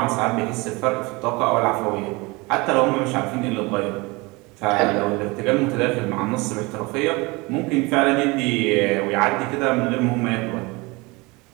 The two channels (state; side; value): quieter; left; 24.9 dB